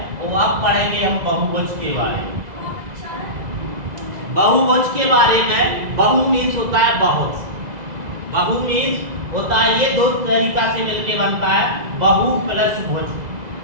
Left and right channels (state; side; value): late; left; 2.0 ms